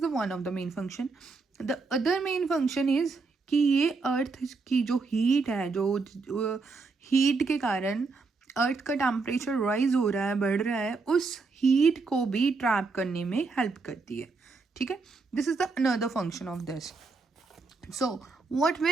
one of the main function. The other main function is कि ये अर्थ की जो हीट है, जो हीट के कारण अर्थ का टेम्परेचर राइज हो रहा है, बढ़ रहा है, उस हीट को भी ट्रैप करने में हेल्प करती है. ठीक है, this is the another function of this. So what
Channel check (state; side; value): quieter; left; 4.2 dB